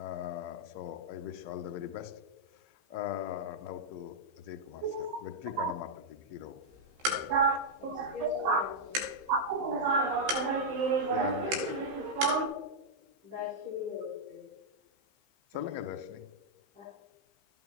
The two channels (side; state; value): left; late; 15 ms